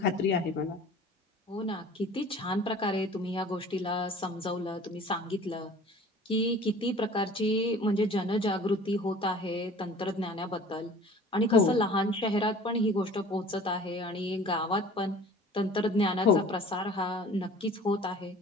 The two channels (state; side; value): normal; both; correlation 0.46